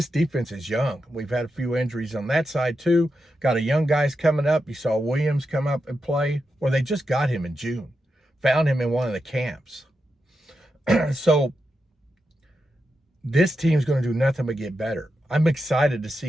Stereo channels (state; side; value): normal; both; correlation 0.87